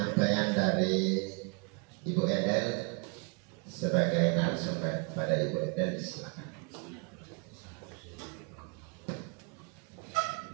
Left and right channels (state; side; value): quieter; left; 35.3 dB